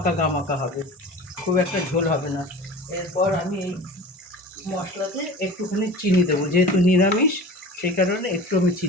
হবে, খুব একটা ঝোল হবে না। এরপর আমি এই মশলাতে একটুখানি চিনি দেবো, যেহেতু নিরামিষ সেই কারণে একটু আমি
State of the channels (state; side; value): normal; both; correlation 0.37